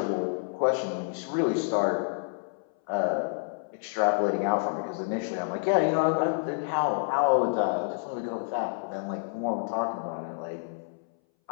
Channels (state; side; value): silent; right; 59 dB below the other